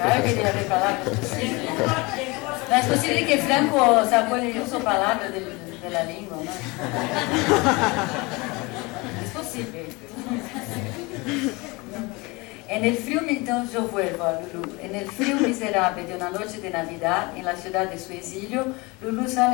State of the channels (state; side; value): quieter; right; 25.2 dB